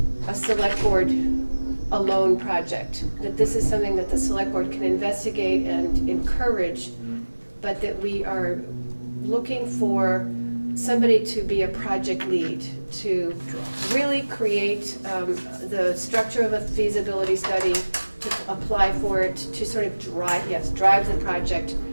a select board alone project, that this is something that the select board can investigate and encourage, but that we are looking for somebody to be a project lead, to really create the structure of a feasibility study, to apply for it, to sort of drive the project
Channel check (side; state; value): both; inverted; correlation -1.00